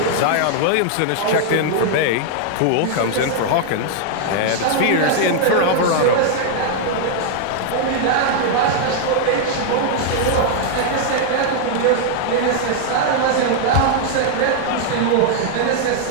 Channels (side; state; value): both; different; correlation 0.00